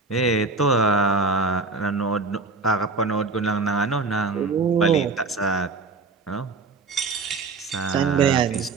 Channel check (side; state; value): left; quieter; 4.1 dB